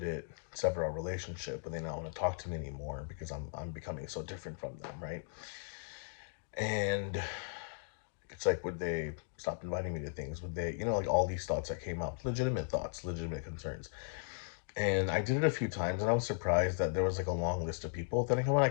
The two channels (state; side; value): silent; right; digital silence